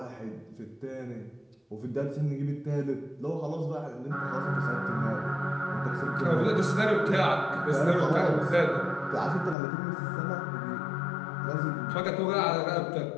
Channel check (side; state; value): right; drops out; at 9.6 s